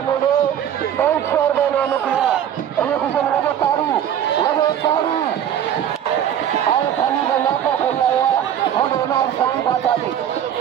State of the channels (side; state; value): left; quieter; 9.9 dB